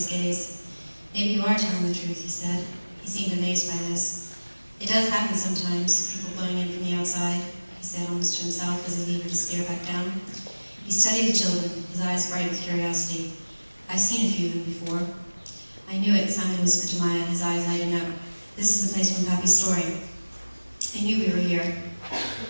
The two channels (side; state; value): both; inverted; correlation -1.00